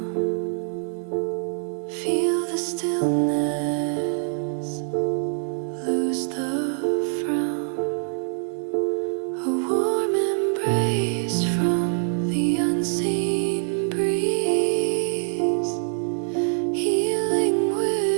Feel the stillness, lose the frown. A warm embrace from the unseen breeze, healing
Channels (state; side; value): silent; left; digital silence